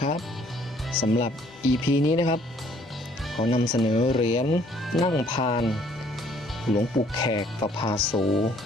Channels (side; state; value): both; normal; correlation 0.61